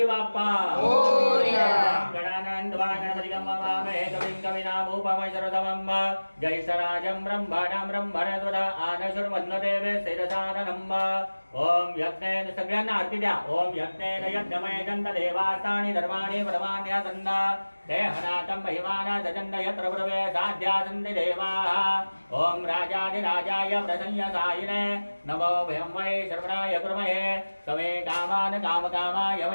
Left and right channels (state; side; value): inverted; both; correlation -1.00